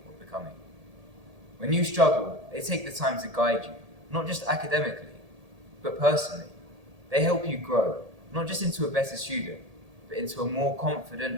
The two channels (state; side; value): late; left; 1.8 ms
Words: of becoming. When you struggle, they take the time to guide you, not just academically, but personally. They help you grow, not just into a better student, but into a more